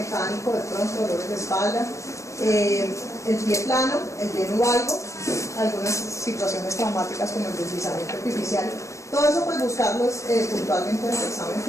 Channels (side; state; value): right; late; 0.15 ms